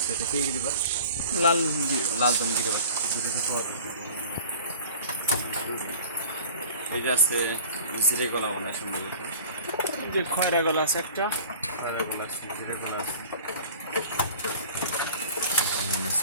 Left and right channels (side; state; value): both; inverted; correlation -0.43